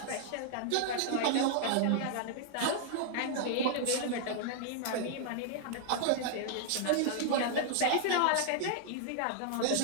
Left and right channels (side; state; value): both; different; correlation -0.01